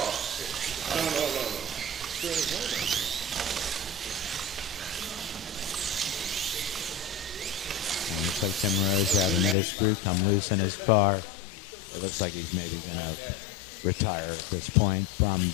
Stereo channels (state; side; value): drops out; right; at 9.6 s